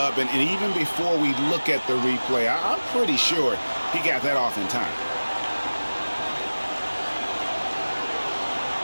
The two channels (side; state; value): both; inverted; correlation -1.00